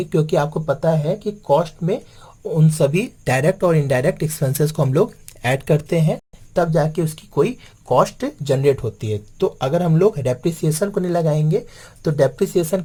क्योंकि आपको पता है कि कॉस्ट में उन सभी डायरेक्ट और इनडायरेक्ट एक्सपेंसेस को हम लोग ऐड करते हैं, तब जाके उसकी कोई कॉस्ट जनरेट होती है। तो अगर हम लोग डेप्रिसिएशन को नहीं लगाएंगे तो डेप्रिसिएशन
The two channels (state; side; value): identical; both; correlation 1.00